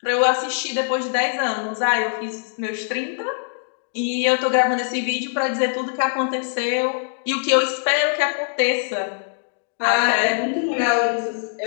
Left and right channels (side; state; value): right; silent; digital silence